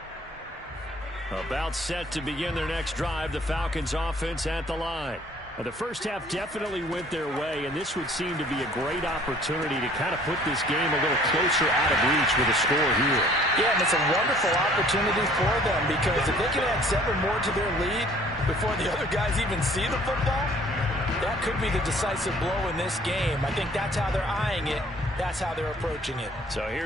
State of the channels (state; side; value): normal; both; correlation 0.55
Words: About set to begin their next drive. The Falcons offense at the line. The first half definitely went their way, and this would seem to be a great opportunity to kind of put this game a little closer out of reach with a score here. Yeah, and it's a wonderful opportunity for them because if they can add 7 more to their lead before the other guys even see the football, that could be the decisive blow in this game. I think that's how they're eyeing it. That's how they're approaching it. So